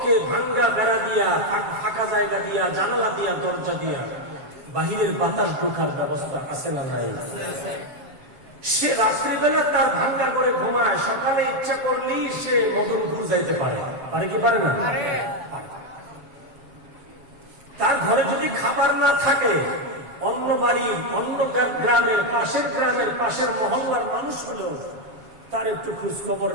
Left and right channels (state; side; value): late; left; 7.5 ms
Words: ভাঙ্গা বেড়া দিয়া, ফাঁকা জায়গা দিয়া, জানালা দিয়া, দরজা দিয়া বাহিরের বাতাস ঢোকার ব্যবস্থা আছে না নাই? সে রাত্রিবেলা তার ভাঙ্গা করে ঘুমায়, সকালে ইচ্ছা করলেই সে মদনপুর যাইতে পারে। পারে কি পারে না? তার ঘরে যদি খাবার না থাকে, অন্য বাড়ির, অন্য গ্রামের, পাশের মহল্লার মানুষ হলেও তার একটু খোঁজ খবর